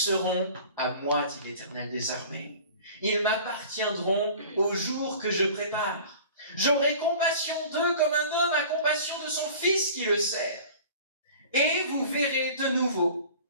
à moi, dit l'Éternel des armées. Ils m'appartiendront au jour que je prépare. J'aurai compassion d'eux comme un homme a compassion de son fils qui le sert. Et vous verrez de nouveau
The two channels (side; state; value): both; inverted; correlation -0.43